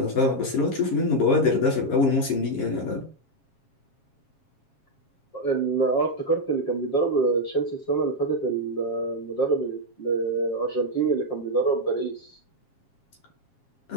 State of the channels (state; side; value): late; right; 7.3 ms